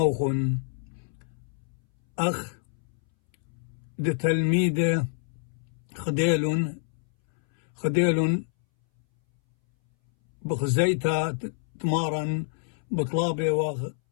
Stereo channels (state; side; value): silent; right; 60 dB below the other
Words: أخ تلميده خديلون بخزيتا تمارا بطلابي